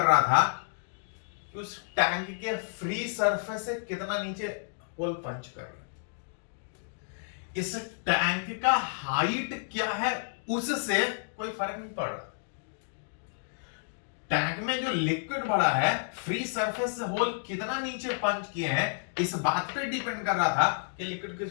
रहा था कि उस टैंक के फ्री सरफेस से कितना नीचे होल पंच कर रहा है। इस टैंक का हाइट क्या है उससे कोई फर्क नहीं पड़ रहा। टैंक में जो लिक्विड भरा है, फ्री सरफेस से होल कितना नीचे पंच किए हैं, इस बात पे डिपेंड कर रहा था कि लिक्विड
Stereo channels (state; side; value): silent; right; digital silence